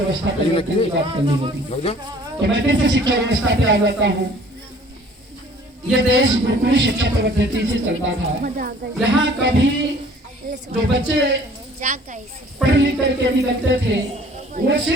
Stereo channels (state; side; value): normal; both; correlation 0.53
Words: पे बात करनी होगी। तो मैं फिर से शिक्षा व्यवस्था पे आ जाता हूँ। ये देश गुरुकुल शिक्षा पद्धति से चलता था। यहाँ कभी जो बच्चे पढ़ लिख करके निकलते थे वो